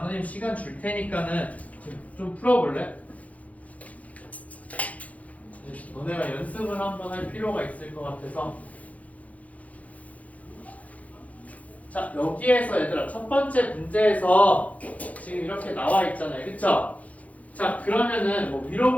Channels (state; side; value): late; right; 0.069 ms